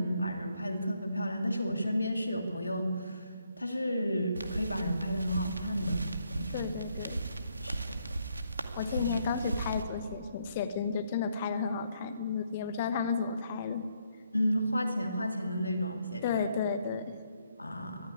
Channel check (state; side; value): inverted; both; correlation -0.73